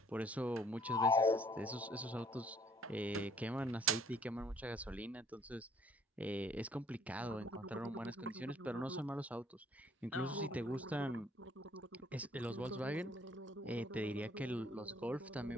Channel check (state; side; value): normal; both; correlation 0.60